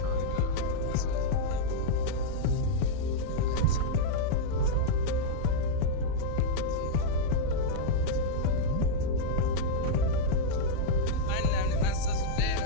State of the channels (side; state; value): both; different; correlation -0.02